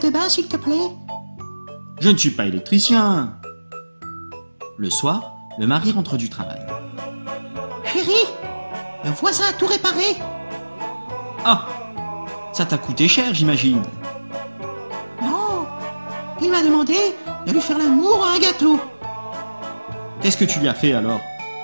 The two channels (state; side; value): inverted; both; correlation -1.00